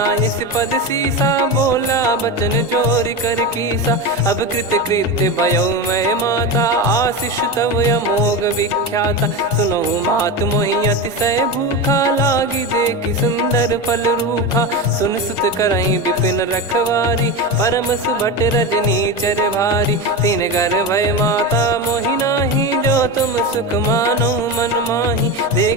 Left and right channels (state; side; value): normal; both; correlation 0.20